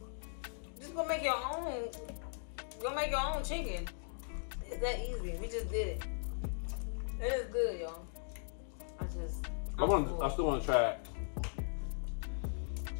just go make your own. Go make your own chicken. It's that easy. We just did it. It is good, y'all. I still want to try it.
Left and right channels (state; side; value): silent; right; digital silence